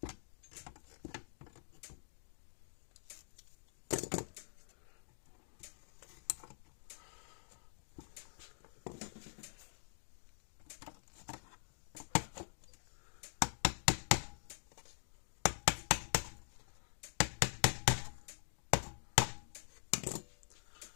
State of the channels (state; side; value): silent; right; digital silence